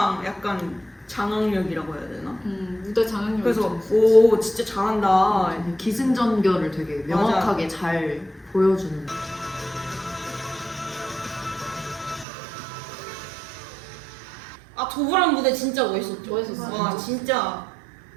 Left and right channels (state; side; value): drops out; left; at 12.2 s